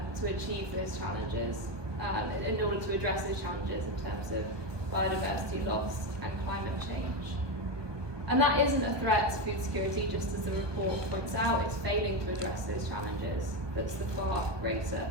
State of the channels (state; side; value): late; left; 1.2 ms